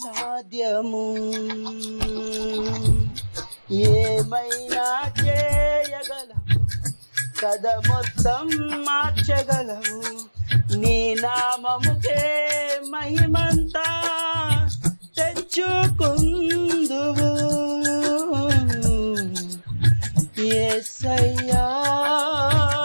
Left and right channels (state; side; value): inverted; both; correlation -1.00